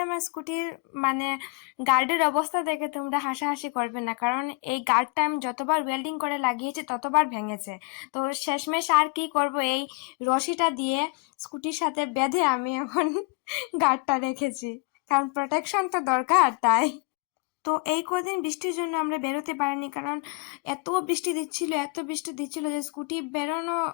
আমার স্কুটির মানে গার্ডের অবস্থা দেখে তোমরা হাসাহাসি করবে না, কারণ এই গার্ডটা আমি যতবার ওয়েল্ডিং করে লাগিয়েছি ততবার ভেঙেছে। তো শেষমেশ আর কি করব, এই রশিটা দিয়ে স্কুটির সাথে বেঁধে আমি এখন গার্ডটা রেখেছি, কারণ প্রোটেকশন তো দরকার তাই। তো এই কদিন বৃষ্টির জন্য আমরা বেরোতে পারিনি, কারণ এত বৃষ্টি দিচ্ছিল যে স্কুটি বেরোনো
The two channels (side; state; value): right; quieter; 29.7 dB